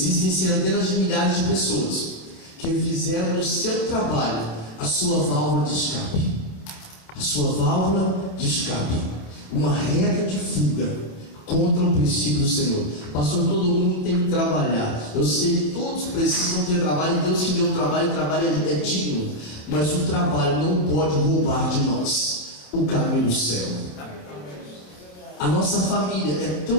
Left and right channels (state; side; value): late; right; 28 ms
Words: centenas de milhares de pessoas que fizeram do seu trabalho a sua válvula de escape. A sua válvula de escape. Uma reta de fuga contra o princípio do Senhor. Pastor, todo mundo tem que trabalhar. Eu sei que todos precisam ter trabalho. Deus que deu trabalho, o trabalho é digno. Mas o trabalho não pode roubar de nós o caminho do céu. A nossa família é